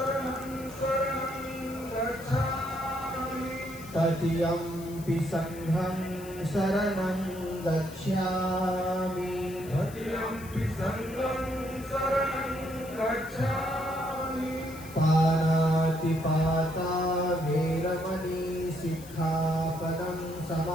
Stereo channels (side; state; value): left; noise; hiss, 18 dB below the sound